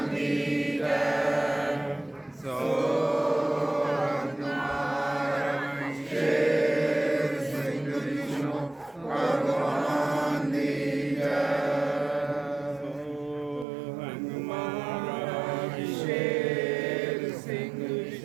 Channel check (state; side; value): drops out; left; at 13.7 s